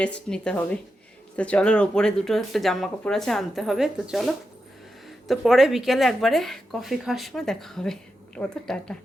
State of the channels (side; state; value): both; normal; correlation 0.88